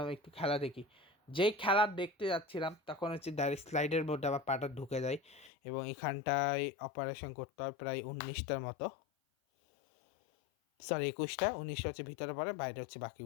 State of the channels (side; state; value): right; drops out; at 5.5 s